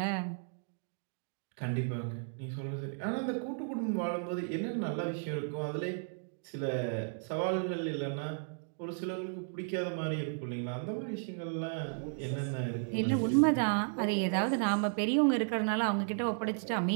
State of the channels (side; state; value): left; silent; digital silence